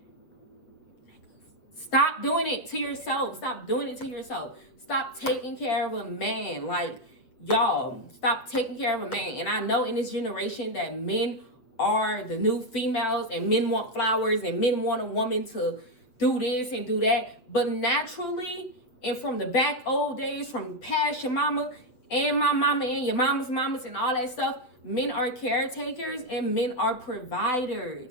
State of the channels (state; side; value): late; right; 7.7 ms